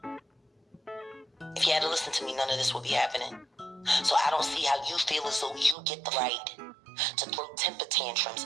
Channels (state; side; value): drops out; left; at 5.8 s